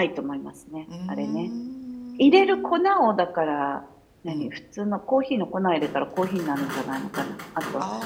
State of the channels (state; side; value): identical; both; correlation 1.00